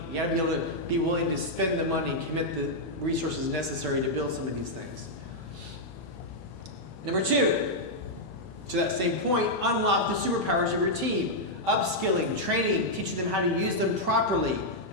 You have to be able to be willing to spend the money and commit the resources necessary to build some of these things. Number two, to that same point, unlock the superpowers of your team. Upskilling, training, teaching them how to use them properly.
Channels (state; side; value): late; right; 33 ms